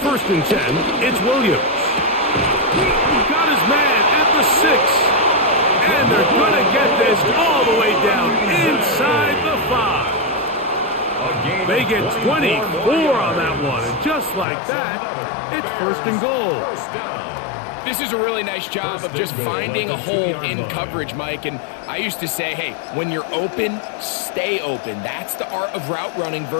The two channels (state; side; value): drops out; right; at 14.5 s